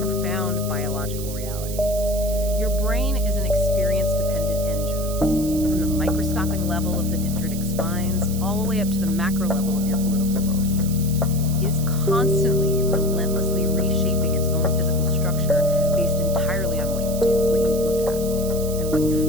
profound biological reality. Your brain is an experience-dependent microscopic level of the dendritic spines, all the way up to the macro level of your political worldview. It is constantly, relentlessly reshaping its own physical structure based entirely on what you do, what you look at, and what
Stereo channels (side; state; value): right; noise; hiss, 11 dB below the sound